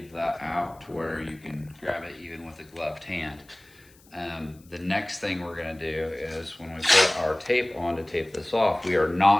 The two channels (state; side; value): noise; left; hiss, 28 dB below the sound